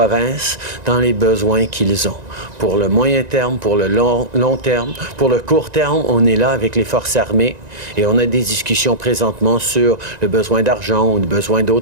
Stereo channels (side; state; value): left; late; 1.9 ms